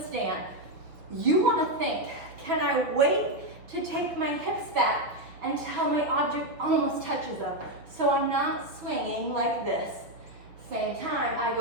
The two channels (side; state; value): left; late; 5.9 ms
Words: stand. You want to think, can I wait to take my hips back until my object almost touches them? So I'm not swinging like this. Same time, I